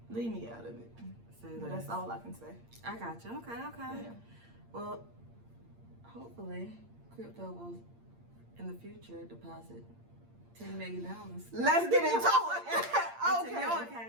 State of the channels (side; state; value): left; late; 8.6 ms